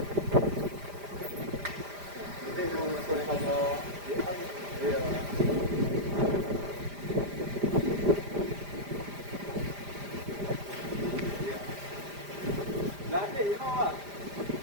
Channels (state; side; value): late; left; 5.0 ms